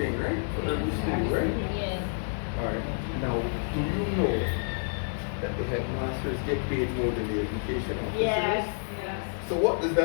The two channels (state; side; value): silent; right; digital silence